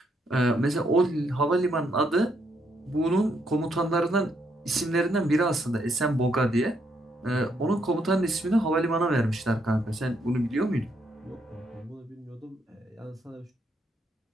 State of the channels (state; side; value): normal; both; correlation 0.75